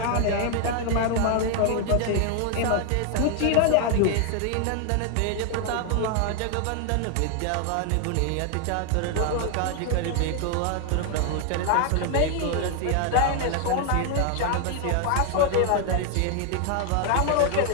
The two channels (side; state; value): both; different; correlation 0.00